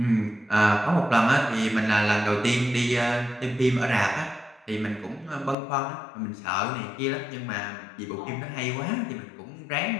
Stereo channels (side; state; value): right; drops out; at 5.6 s